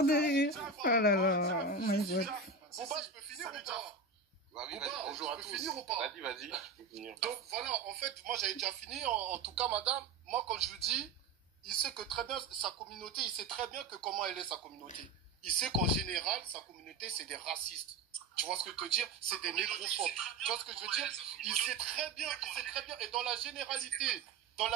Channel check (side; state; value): left; quieter; 4.1 dB